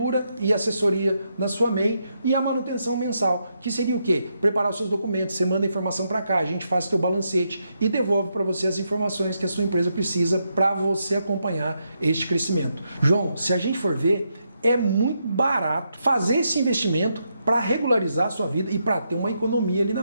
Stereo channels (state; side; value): inverted; both; correlation -0.81